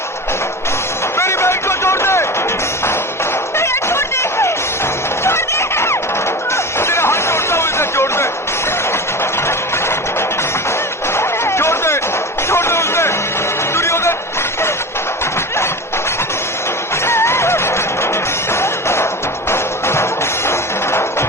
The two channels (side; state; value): both; normal; correlation 0.28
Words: मेरी बहन को छोड़ दे। छोड़ दे, छोड़ दे। तेरा हाथ छोड़ता हूँ, इसे छोड़ दे, छोड़ दे, छोड़ दे उसे, दुर्योधन।